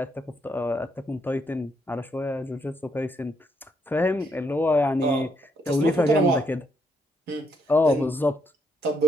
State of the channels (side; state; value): both; normal; correlation 0.75